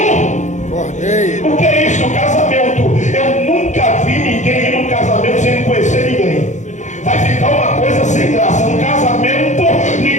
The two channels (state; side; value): late; right; 0.35 ms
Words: Cordeiro. O que é isso? O casamento. Eu nunca vi ninguém ir num casamento sem conhecer ninguém. Vai ficar uma coisa sem graça. No casamento,